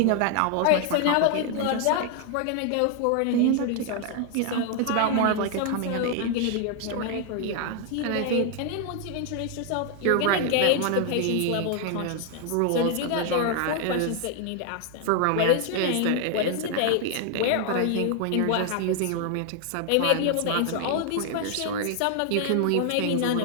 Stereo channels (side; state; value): both; different; correlation 0.00